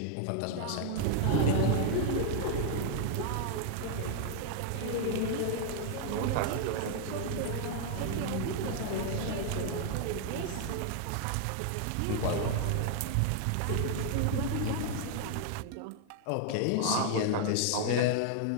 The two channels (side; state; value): both; different; correlation 0.00